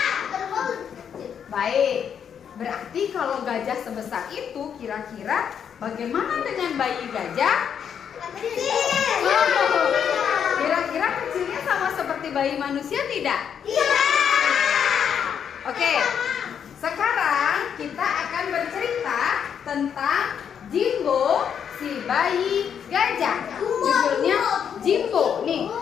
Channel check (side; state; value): right; quieter; 8.0 dB